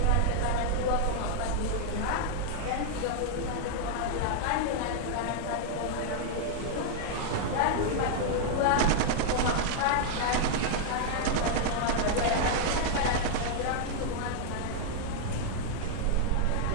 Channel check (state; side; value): different; both; correlation 0.00